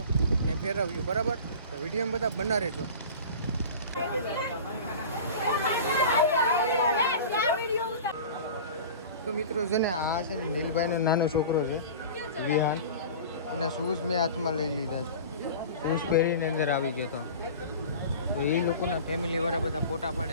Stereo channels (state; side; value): inverted; both; correlation -0.37